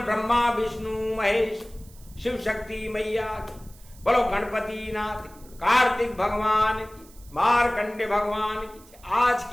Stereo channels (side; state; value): right; noise; hiss, 24 dB below the sound